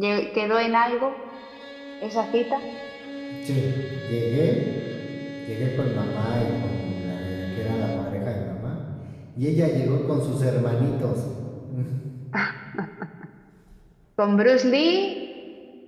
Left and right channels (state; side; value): identical; both; correlation 1.00